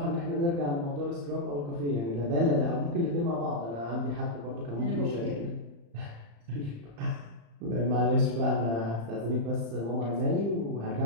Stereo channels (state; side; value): late; left; 35 ms